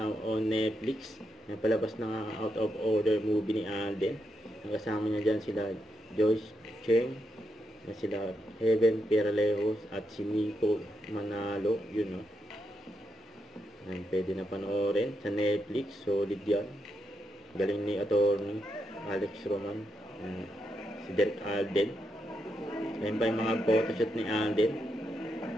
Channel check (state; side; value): normal; both; correlation 0.83